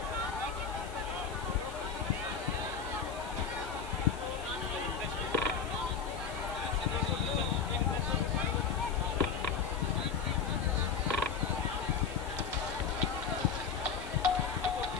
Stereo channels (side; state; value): right; quieter; 5.9 dB